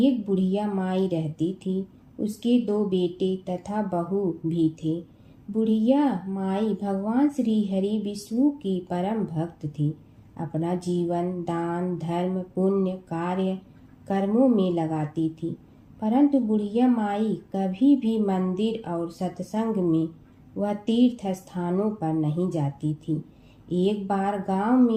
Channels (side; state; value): both; identical; correlation 1.00